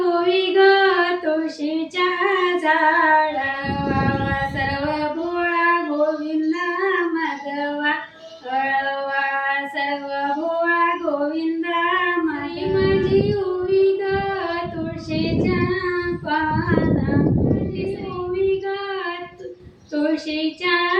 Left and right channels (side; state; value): both; identical; correlation 1.00